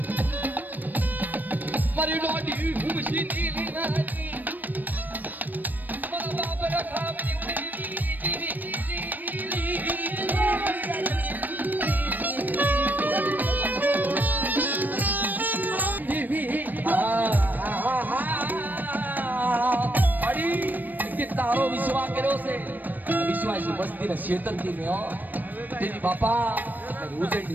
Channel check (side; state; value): left; late; 0.088 ms